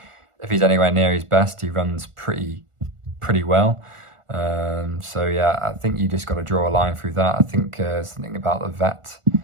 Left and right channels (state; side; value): late; left; 1.4 ms